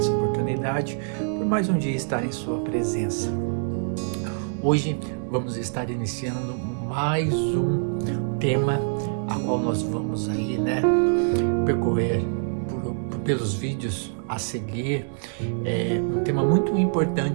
oportunidade, por mais um dia estar em sua presença. Hoje vamos estar iniciando mais um tema, a qual nós vamos aí, percorrer pelos vídeos a seguir. É um tema muito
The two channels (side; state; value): left; silent; 62 dB below the other